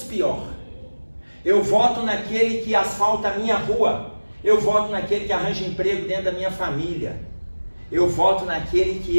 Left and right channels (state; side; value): inverted; both; correlation -1.00